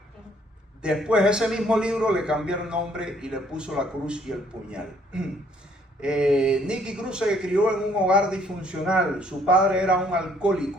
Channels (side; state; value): both; normal; correlation 0.64